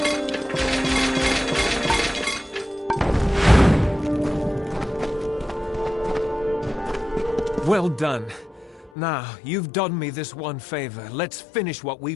Well done. Now, you've done me this one favor. Let's finish what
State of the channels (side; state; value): right; drops out; at 8.9 s